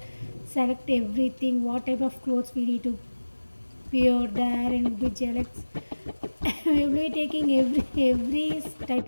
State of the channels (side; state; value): both; inverted; correlation -1.00